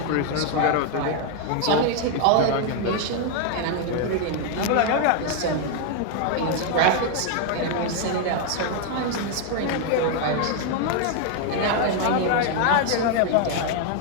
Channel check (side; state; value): both; different; correlation 0.00